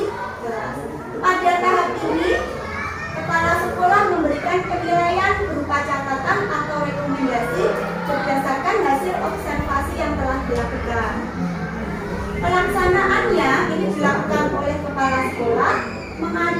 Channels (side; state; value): both; identical; correlation 1.00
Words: kelas. Pada tahap ini, kepala sekolah memberikan penilaian berupa catatan atau rekomendasi berdasarkan hasil observasi yang telah dilakukan. Pelaksanaannya ini dilakukan oleh kepala sekolah